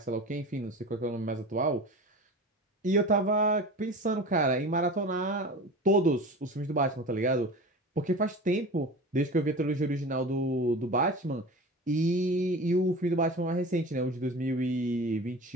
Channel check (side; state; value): both; normal; correlation 0.34